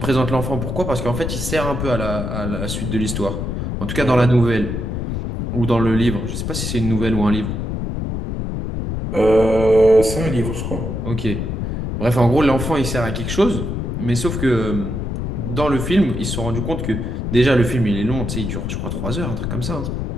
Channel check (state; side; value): noise; left; rumble, 3 dB below the sound